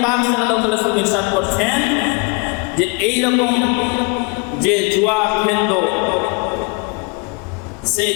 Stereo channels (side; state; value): right; quieter; 31.3 dB